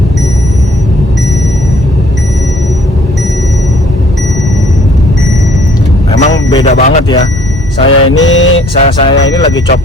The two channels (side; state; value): both; normal; correlation 0.59